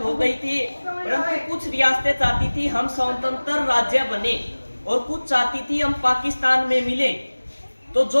हो गई थी, परंतु कुछ रियासतें चाहती थी हम स्वतंत्र राज्य बने और कुछ चाहती थी हम पाकिस्तान में मिले। तो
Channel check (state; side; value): inverted; both; correlation -1.00